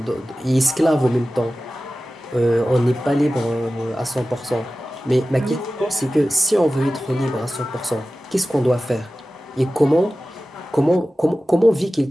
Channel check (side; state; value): both; normal; correlation 0.95